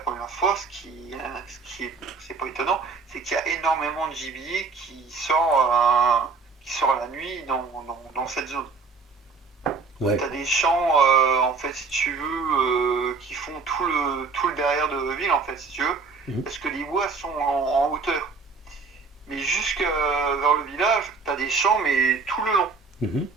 fois, c'est pas étonnant, c'est qu'il y a énormément de gibier qui sort la nuit dans cette zone. Ouais. T'as des champs en fait si tu veux qui font tout le derrière de ville en fait si tu veux, Mhm. parce que les bois sont en hauteur. Mais jusque vers le village, t'as des champs mais tout le long. Mhm.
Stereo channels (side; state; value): left; quieter; 4.7 dB